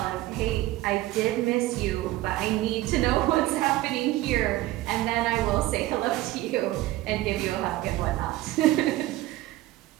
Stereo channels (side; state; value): left; quieter; 16.8 dB